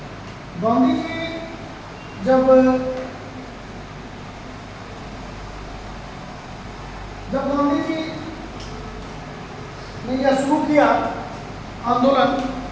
गांधी जी जब गांधी जी ने यह शुरू किया आंदोलन,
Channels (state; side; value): identical; both; correlation 1.00